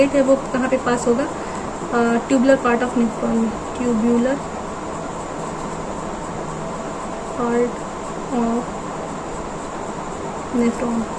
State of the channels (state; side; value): identical; both; correlation 1.00